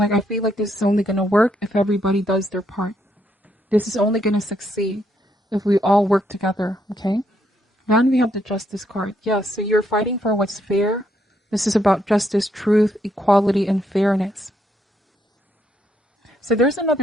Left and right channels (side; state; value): both; normal; correlation 0.75